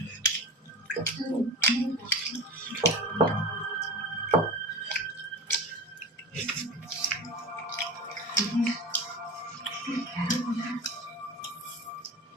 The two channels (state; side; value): normal; both; correlation 0.30